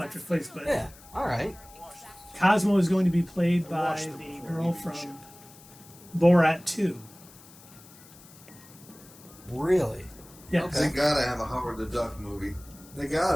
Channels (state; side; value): noise; left; hiss, 22 dB below the sound